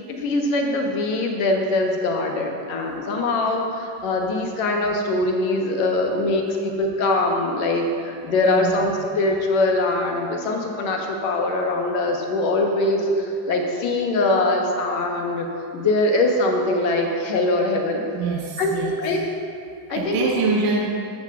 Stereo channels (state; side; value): late; left; 11 ms